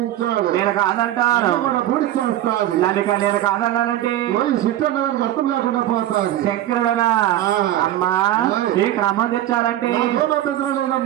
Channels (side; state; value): left; quieter; 13.3 dB